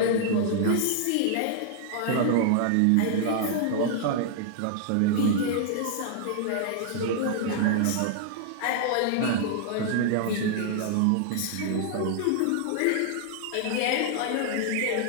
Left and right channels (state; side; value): different; both; correlation -0.01